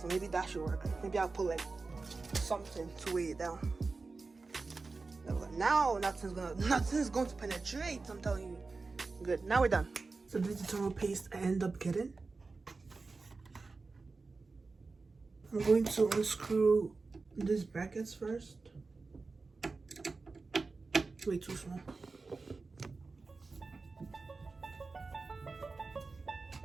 maybe that should work. Maybe I'll put like something to weigh it down. Now nothing's going to penetrate. I'm telling you. Good. Now we're done. So this is the thermal paste I end up getting. I'm going to unscrew these brackets first. Way too small.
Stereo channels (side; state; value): left; quieter; 4.0 dB